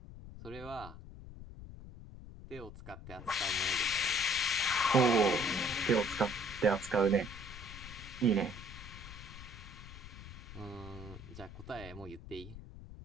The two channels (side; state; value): left; noise; rumble, 13 dB below the sound